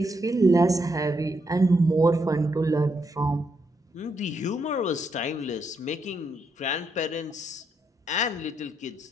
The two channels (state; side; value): normal; both; correlation 0.79